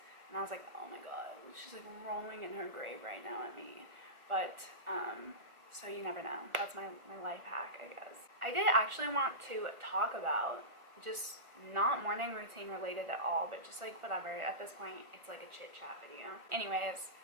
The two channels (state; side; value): late; left; 1.4 ms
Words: and I was like, oh my God, she's like rolling in her grave right now at me. But, so you never know. That's my life hack, I guess. I did actually want to talk about just not morning routine related at all, but just like whatever. At this point, it's like a chit chat video. Anyways,